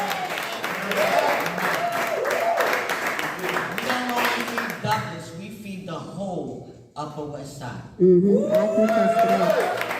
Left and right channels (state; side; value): identical; both; correlation 1.00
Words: We don't only feed Douglas, we feed the whole Upper West Side. Mm-hmm. I can attest to that.